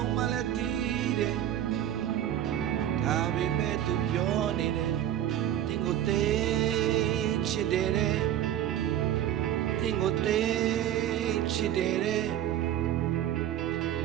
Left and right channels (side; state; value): left; quieter; 11.4 dB